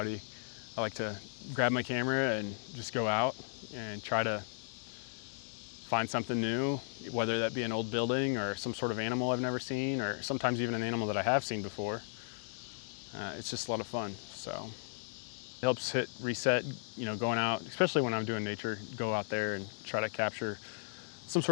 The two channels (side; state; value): right; silent; digital silence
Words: I like to grab my camera and just go out and try to find something new, whether that be an old building or some sort of animal I've never seen, or sometimes even an animal that I have seen before. It's just a lot of fun. So it helps hit reset, you know, going out, especially when I'm doing nature, go out there and try to capture some